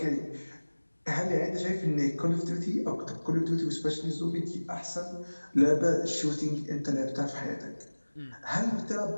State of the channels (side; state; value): both; inverted; correlation -1.00